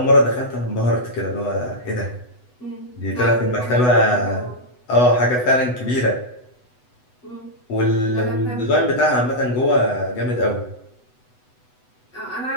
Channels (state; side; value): late; right; 8.0 ms